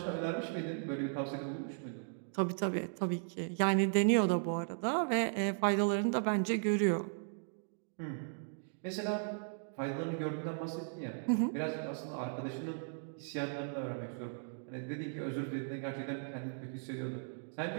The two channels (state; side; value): silent; left; digital silence